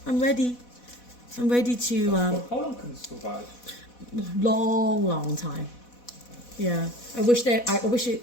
I'm ready to. How long can it survive? long time. Yeah, I wish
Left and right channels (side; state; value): right; late; 4.1 ms